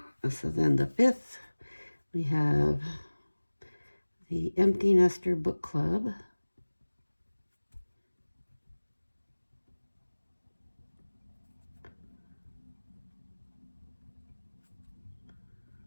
so then the 5th, we have the Empty Nester Book Club.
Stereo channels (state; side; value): inverted; both; correlation -1.00